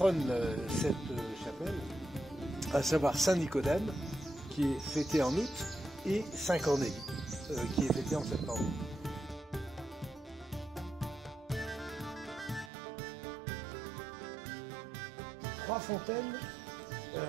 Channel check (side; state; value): left; drops out; at 12.7 s